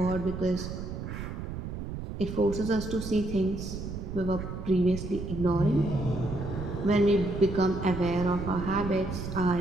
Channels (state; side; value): noise; right; rumble, 7 dB below the sound